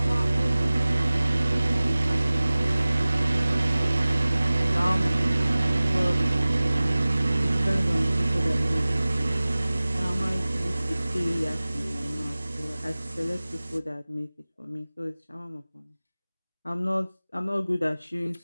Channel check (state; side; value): inverted; both; correlation -0.98